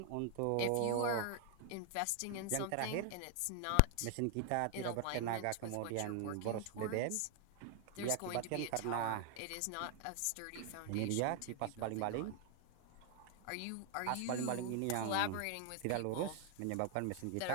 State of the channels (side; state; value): both; different; correlation 0.00